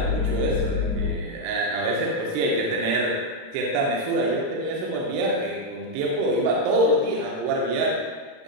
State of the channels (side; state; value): left; late; 37 ms